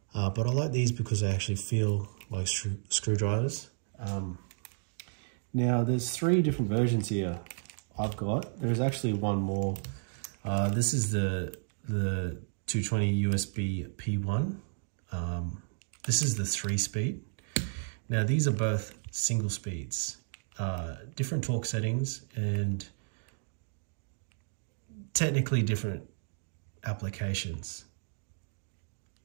But I like these because they actually feel like screwdrivers. Now there's 3 different versions here I've got. There's actually one more. This is the 220 USB P1. This is the 3-speed. Now these are both single speeds, different torque settings and technically different applications.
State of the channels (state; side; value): silent; left; digital silence